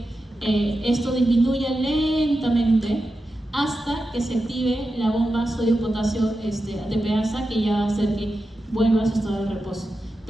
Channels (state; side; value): normal; both; correlation 0.90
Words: esto disminuya lentamente hasta que se active la bomba sodio-potasio ATPasa, que ya va a hacer que vuelva a su estado de reposo.